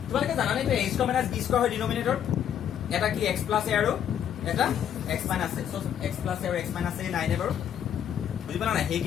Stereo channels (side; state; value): right; quieter; 9.5 dB